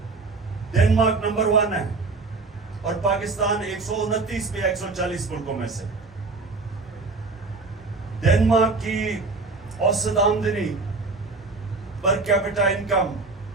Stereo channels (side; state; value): left; quieter; 3.8 dB